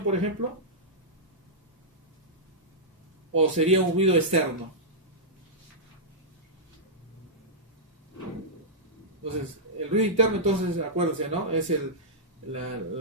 por ejemplo. ¿O sería un ruido externo? Entonces, el ruido interno, entonces, acuérdense, ¿no? Es el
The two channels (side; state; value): both; normal; correlation -0.11